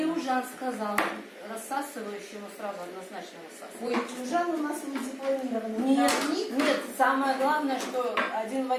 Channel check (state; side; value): identical; both; correlation 1.00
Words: сказал, рассасывающему сразу однозначно рассасывать. Ой, чужан у нас не дипломированный. Нет, нет, самое главное, что один в